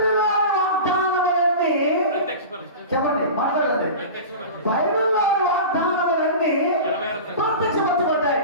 వాగ్దానములన్నీ, చెప్పండి, మాట్లాడండి, బైబిల్లో వాగ్దానములన్నీ ప్రత్యక్షపరచబడ్డాయి.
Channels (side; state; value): both; inverted; correlation -0.31